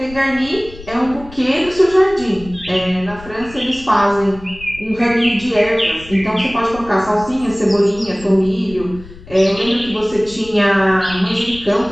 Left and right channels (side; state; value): left; noise; rumble, 18 dB below the sound